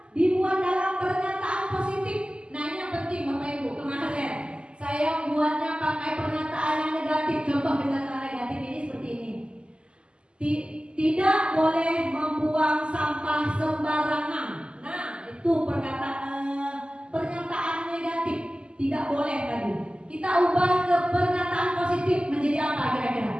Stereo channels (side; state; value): left; late; 0.051 ms